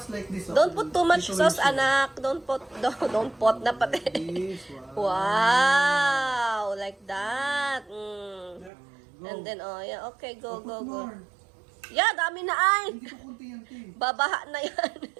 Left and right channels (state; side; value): drops out; left; at 8.7 s